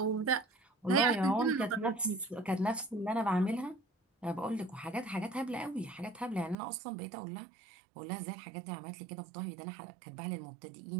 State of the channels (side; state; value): left; drops out; at 6.6 s